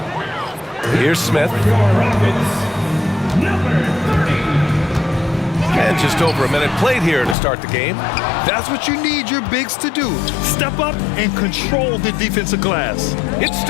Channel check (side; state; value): right; drops out; at 7.4 s